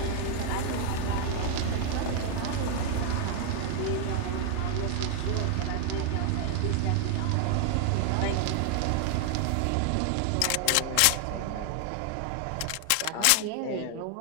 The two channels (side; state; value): both; different; correlation 0.00